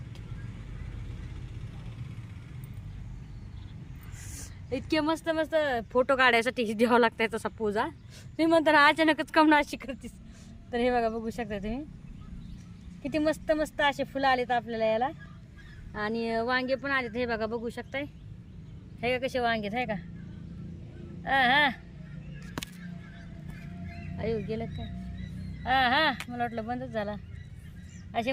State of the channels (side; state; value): both; identical; correlation 1.00